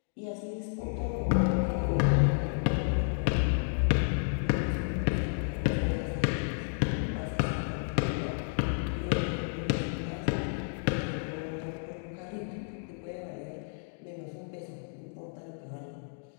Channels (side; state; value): right; silent; digital silence